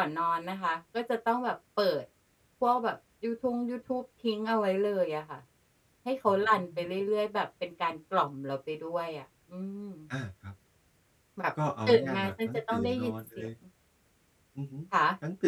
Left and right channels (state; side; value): identical; both; correlation 1.00